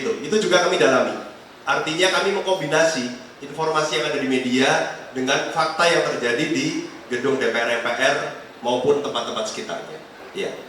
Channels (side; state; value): both; identical; correlation 1.00